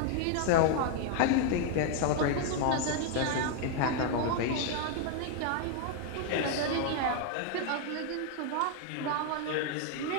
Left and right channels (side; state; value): both; different; correlation 0.00